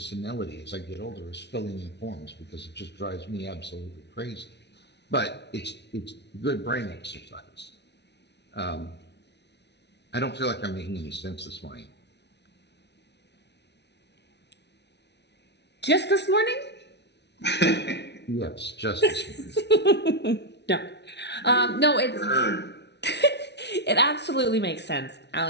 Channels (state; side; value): late; right; 0.50 ms